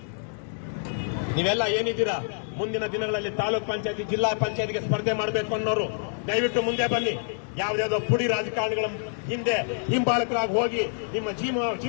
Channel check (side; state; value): right; silent; digital silence